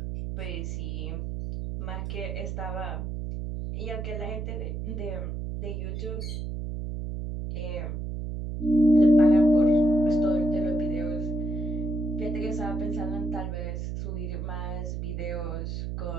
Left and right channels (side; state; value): right; noise; hum, 4 dB below the sound